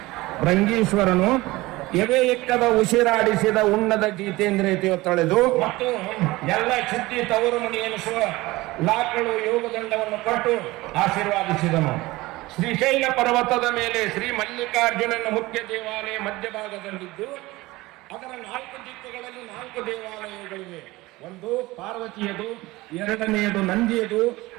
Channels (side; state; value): left; quieter; 20.0 dB